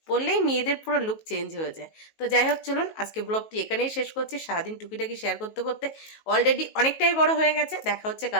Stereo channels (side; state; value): right; late; 19 ms